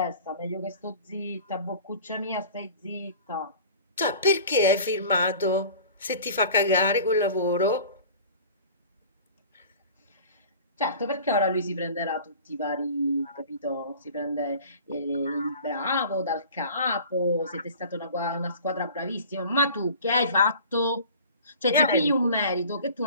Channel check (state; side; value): inverted; both; correlation -0.43